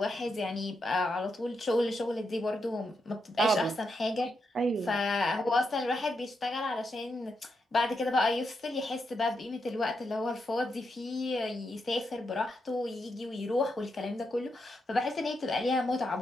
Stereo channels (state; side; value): normal; both; correlation 0.83